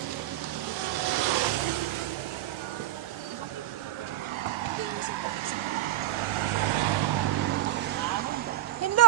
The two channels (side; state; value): left; quieter; 14.2 dB